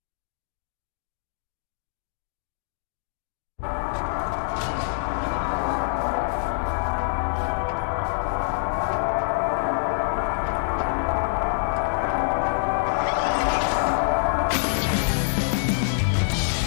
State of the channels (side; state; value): right; silent; digital silence